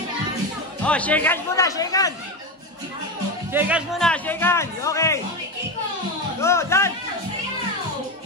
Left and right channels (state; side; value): normal; both; correlation 0.16